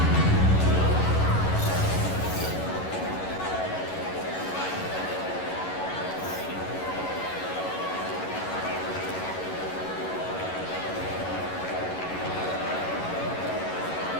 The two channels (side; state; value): right; late; 11 ms